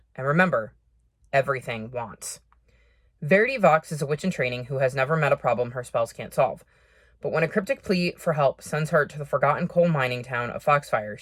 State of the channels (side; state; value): both; identical; correlation 1.00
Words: and remember, everything wants. Verity Vox is a witch in training who has never met a problem her spells can't solve. But when a cryptic plea for help sends her to the forgotten coal mining town of Foxfire,